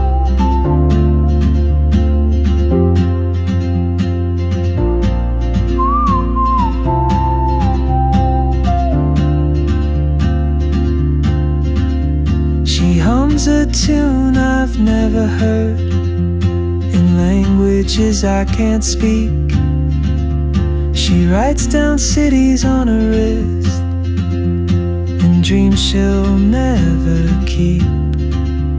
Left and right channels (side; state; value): both; identical; correlation 1.00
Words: She hums a tune I've never heard in languages I can't speak. She writes down cities on her wrist and dreams she'll never keep.